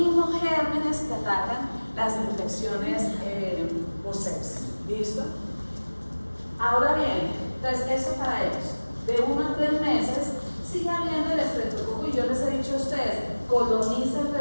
gérmenes que atacan las infecciones por sepsis. ¿Listo? Ahora bien, entonces eso para ellos, de 1 a 3 meses, sigue habiendo el estreptococo y yo les he dicho a ustedes, coloniza el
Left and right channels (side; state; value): both; inverted; correlation -1.00